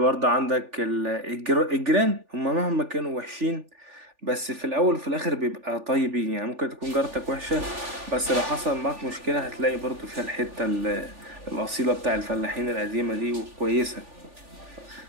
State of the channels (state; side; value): late; left; 3.4 ms